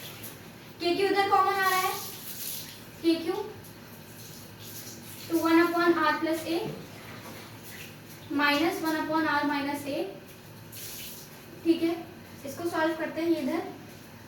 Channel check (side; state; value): both; identical; correlation 1.00